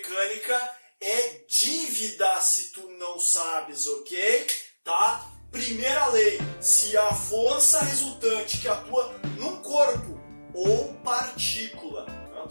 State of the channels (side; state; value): both; inverted; correlation -1.00